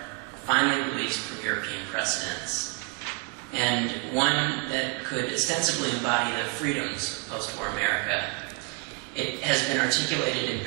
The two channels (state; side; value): quieter; left; 29.6 dB